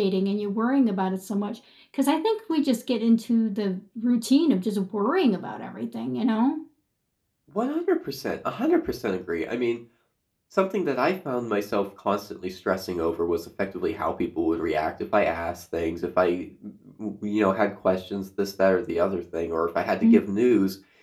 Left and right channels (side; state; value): both; identical; correlation 1.00